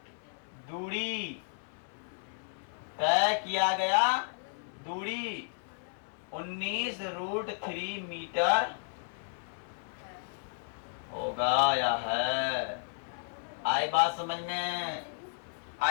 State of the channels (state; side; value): silent; right; 56 dB below the other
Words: दूरी 19 रूट 3 मीटर होगा या है? आई बात समझ में?